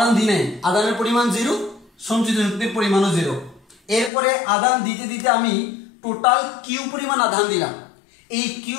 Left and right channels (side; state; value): right; drops out; at 4.1 s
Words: দিই নাই, আদানের পরিমাণ 0, সঞ্চিত শক্তির পরিমাণও 0। এরপরে আদান দিতে দিতে আমি টোটাল কিউ পরিমাণ আদান দিলাম। এই